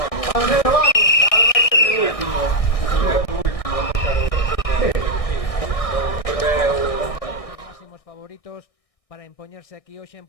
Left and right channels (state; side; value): late; right; 1.6 ms